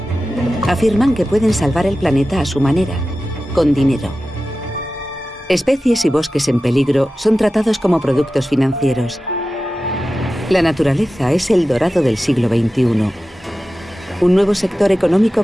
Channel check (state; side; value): normal; both; correlation 0.94